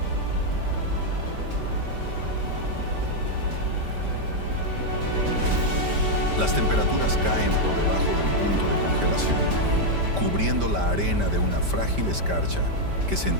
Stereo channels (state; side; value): late; left; 5.1 ms